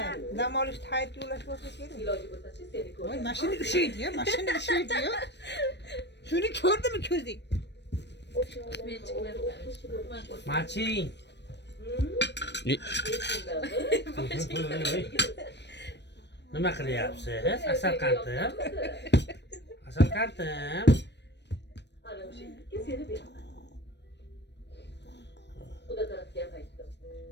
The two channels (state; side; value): late; right; 0.50 ms